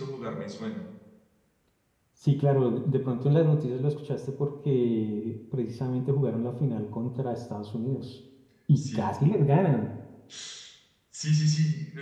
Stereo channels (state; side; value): identical; both; correlation 1.00